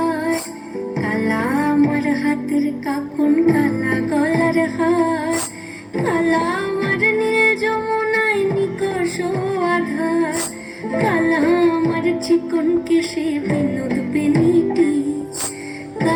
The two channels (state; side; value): identical; both; correlation 1.00